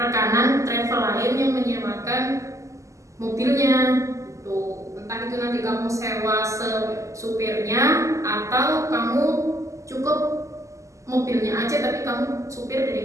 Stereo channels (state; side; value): late; left; 0.15 ms